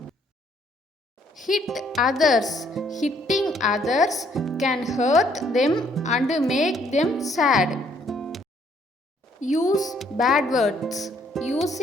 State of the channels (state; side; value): normal; both; correlation 0.66